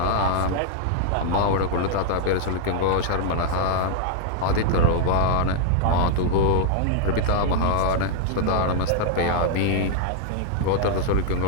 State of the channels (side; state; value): both; different; correlation -0.01